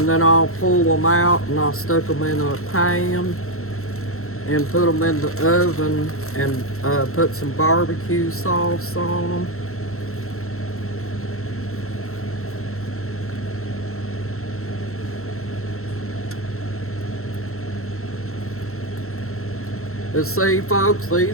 then I'll pull them out and I'll stick them in a pan and put them in the oven and put some barbecue sauce on them. But see, folks,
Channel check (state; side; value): late; right; 0.63 ms